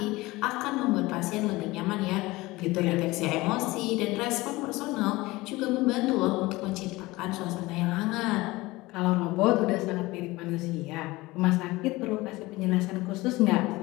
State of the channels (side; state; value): right; quieter; 20.5 dB